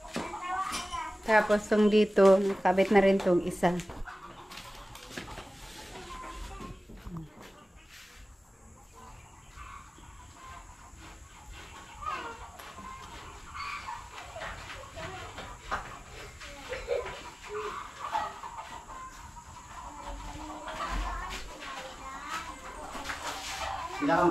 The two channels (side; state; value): both; normal; correlation 0.97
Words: Tapos tong dito, nakabit na rin tong isa. Pila